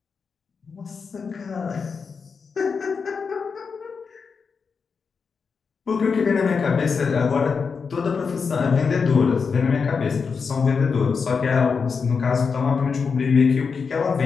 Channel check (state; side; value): quieter; right; 5.5 dB